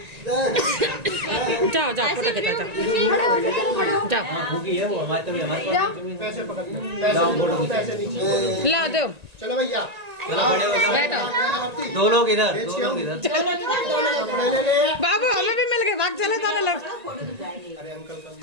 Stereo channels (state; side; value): late; left; 1.9 ms